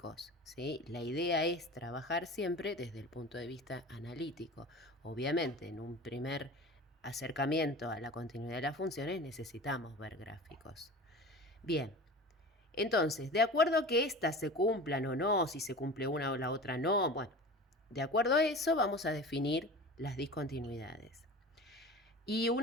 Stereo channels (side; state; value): both; normal; correlation 0.36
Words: ¿sí? La idea es trabajar siempre desde el punto de vista analítico. Obviamente, en un primer acercamiento a la continuidad de las funciones necesitamos ver gráficos. Bien, entonces, de acuerdo a que éstas se cumplan o no, si se cumple una o la otra no, bueno, de acuerdo a eso vamos a definir las discontinuidades. Y